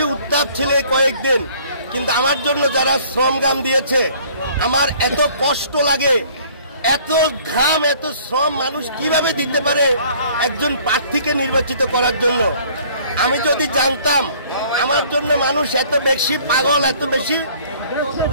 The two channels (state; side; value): inverted; both; correlation -0.55